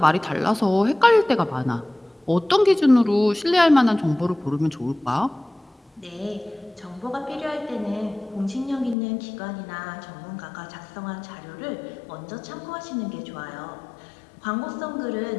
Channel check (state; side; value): drops out; right; at 9.0 s